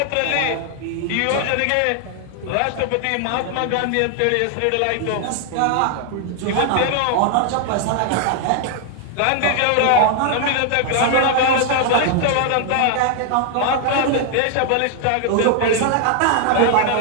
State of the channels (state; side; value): different; both; correlation 0.00